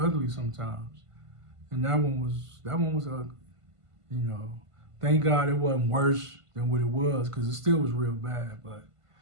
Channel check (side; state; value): left; late; 1.5 ms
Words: sometimes. And that one was ugly, you know. Thank God it wasn't worse than what it was, because it still was real bad, but